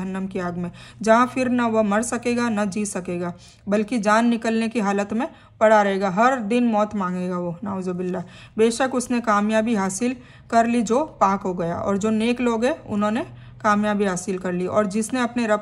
की आग में, जहाँ फिर न वह मर सकेगा न जी सकेगा, बल्कि जान निकलने की हालत में पड़ा रहेगा। हर दिन मौत मांगेगा वो, नाउजुबिल्लाह। बेशक उसने कामयाबी हासिल कर ली जो पाक हो गया, और जो नेक लोग हैं उन्होंने कामयाबी हासिल कर ली, और जिसने अपने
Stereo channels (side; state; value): both; identical; correlation 1.00